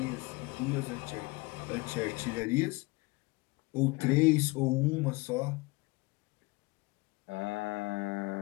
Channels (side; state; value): right; quieter; 24.6 dB